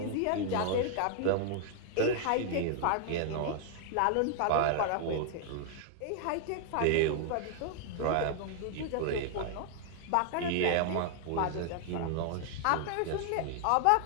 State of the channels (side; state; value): both; different; correlation 0.00